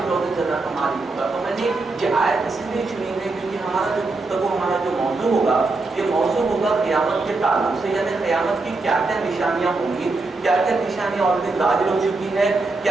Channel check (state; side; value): quieter; left; 3.5 dB